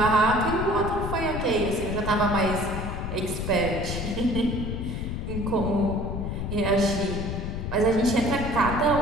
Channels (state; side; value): noise; left; rumble, 4 dB below the sound